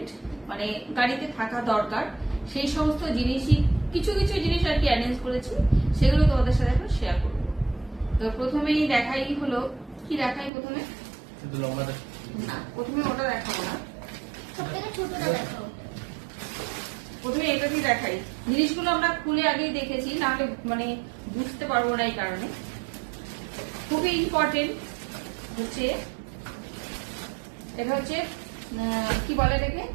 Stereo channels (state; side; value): drops out; left; at 10.5 s